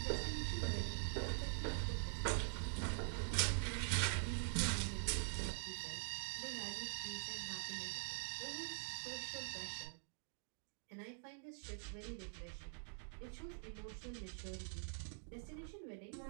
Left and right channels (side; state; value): left; silent; digital silence